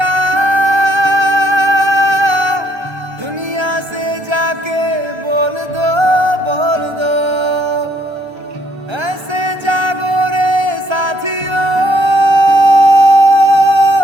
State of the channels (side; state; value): left; late; 1.3 ms